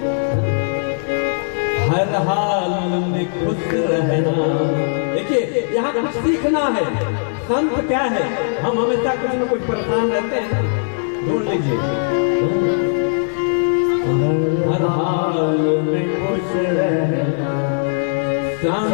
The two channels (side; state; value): right; silent; digital silence